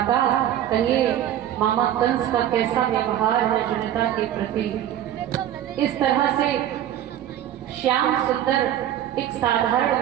कहिए मामा कंस का कैसा व्यवहार है जनता के प्रति। इस तरह से श्याम सुंदर एक साधारण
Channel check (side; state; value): left; quieter; 11.4 dB